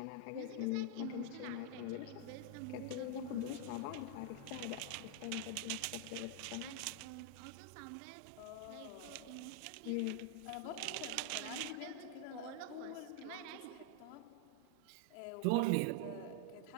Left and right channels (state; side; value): different; both; correlation 0.00